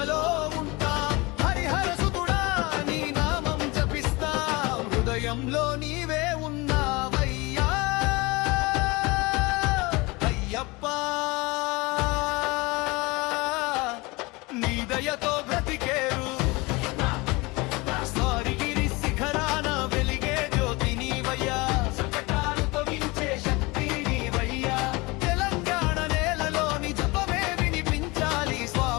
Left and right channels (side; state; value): right; quieter; 24.3 dB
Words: ఉంటా. హరిహర సుతుడా నీ నామం జపిస్తా. హృదయంలో నీవే ఉన్నావయ్యా అయ్యప్ప. నీ దయతో బ్రతికేరు స్వారిగిరి శిఖరాన వెలిగే జ్యోతి నీవయ్యా. సంకటాలు తొలగించే శక్తి నీవయ్యా. తెలంగాణ నేలలోని జపమే వినిపించాలి.